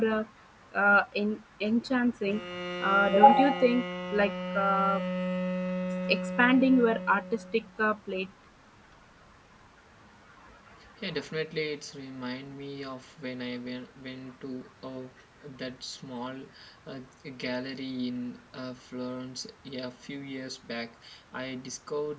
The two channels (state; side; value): identical; both; correlation 1.00